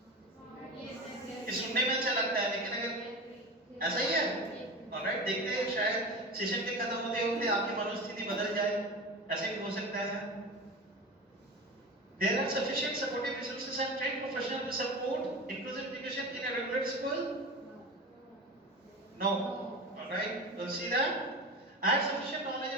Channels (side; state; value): both; normal; correlation 0.29